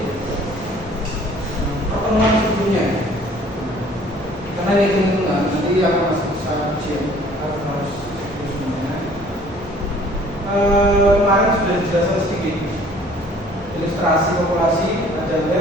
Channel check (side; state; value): both; normal; correlation 0.54